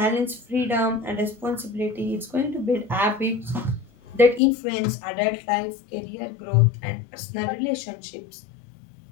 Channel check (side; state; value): right; drops out; at 4.4 s